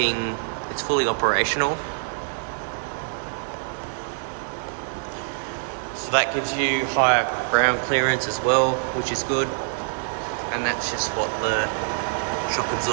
it's fully operational. So that gives you higher ground clearance as well, which is good. And that's just what the shock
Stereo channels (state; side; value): silent; left; digital silence